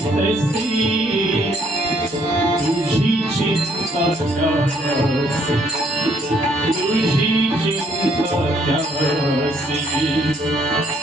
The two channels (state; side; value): normal; both; correlation 0.66